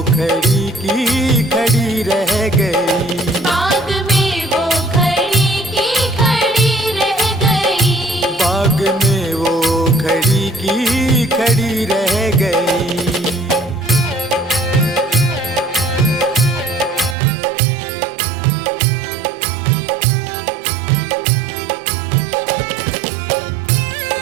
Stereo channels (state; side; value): drops out; left; at 17.2 s